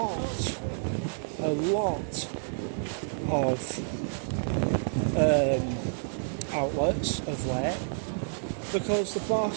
of outlets of late because the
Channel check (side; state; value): left; silent; 58 dB below the other